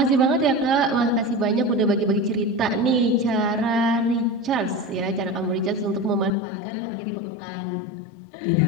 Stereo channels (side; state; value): right; drops out; at 6.3 s